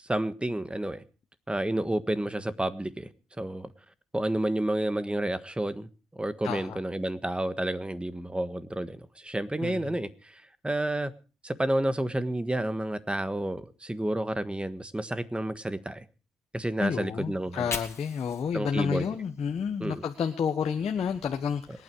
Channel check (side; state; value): both; normal; correlation 0.89